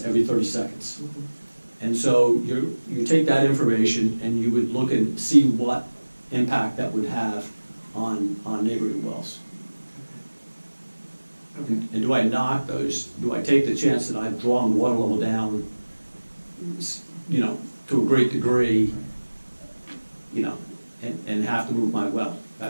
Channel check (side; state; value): both; inverted; correlation -1.00